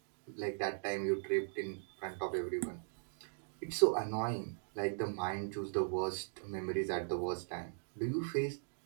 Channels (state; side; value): silent; left; digital silence